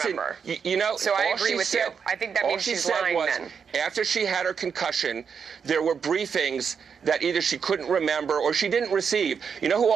You know, so I agree with you. I think that means she's lying then. After she had her concussion, there were briefings that either she couldn't remember or she didn't receive. You know who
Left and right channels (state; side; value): quieter; left; 6.5 dB